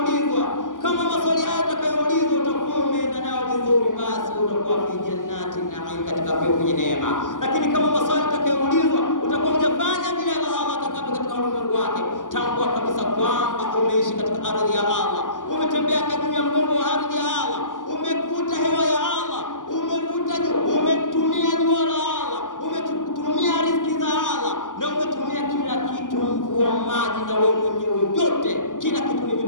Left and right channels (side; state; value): right; late; 0.88 ms